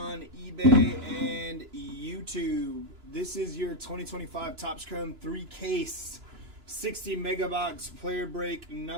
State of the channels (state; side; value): late; left; 2.9 ms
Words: eBay and YouTube. This is your 2025 Topps Chrome 3-case 60 MegaBox player break